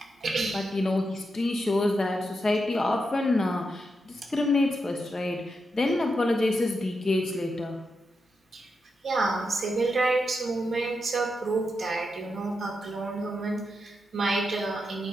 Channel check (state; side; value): normal; both; correlation 0.86